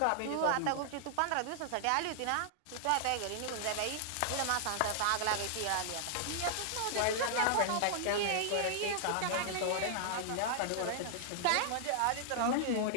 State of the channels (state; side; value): different; both; correlation -0.01